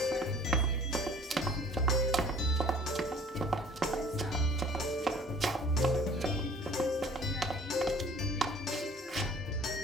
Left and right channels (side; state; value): both; normal; correlation 0.51